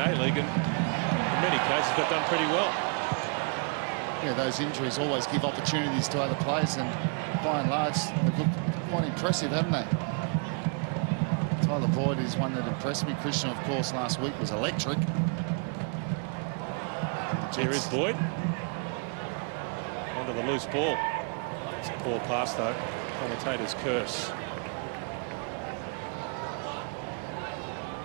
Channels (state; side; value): quieter; left; 39.1 dB